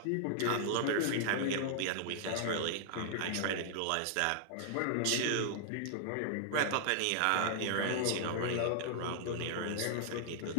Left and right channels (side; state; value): both; different; correlation -0.01